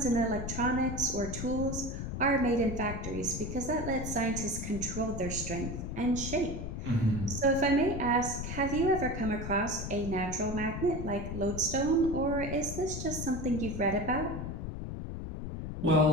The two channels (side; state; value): left; noise; rumble, 6 dB below the sound